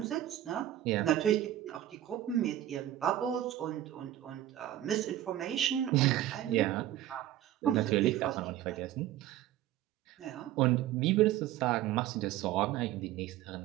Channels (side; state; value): left; quieter; 13.0 dB